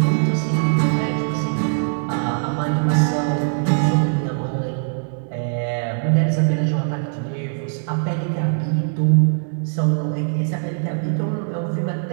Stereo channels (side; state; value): left; silent; 63 dB below the other